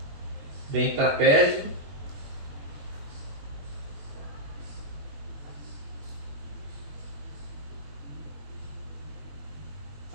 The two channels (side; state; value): left; late; 21 ms